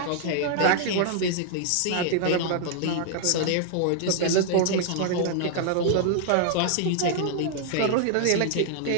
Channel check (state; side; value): different; both; correlation 0.00